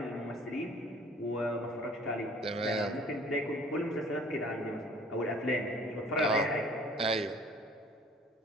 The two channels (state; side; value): normal; both; correlation 0.52